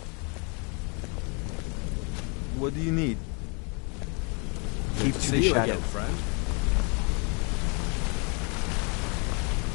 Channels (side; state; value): right; quieter; 33.8 dB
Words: What do you need? Keep to the shadow, friend.